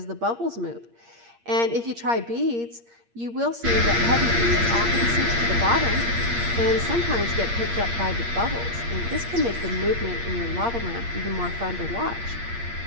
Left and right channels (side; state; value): left; late; 8.6 ms